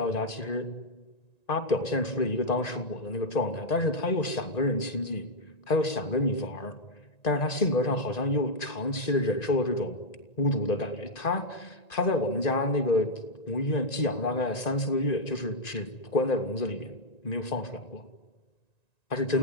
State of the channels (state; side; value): late; right; 1.9 ms